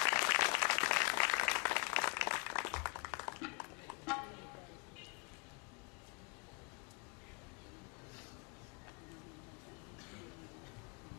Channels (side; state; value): right; quieter; 36.1 dB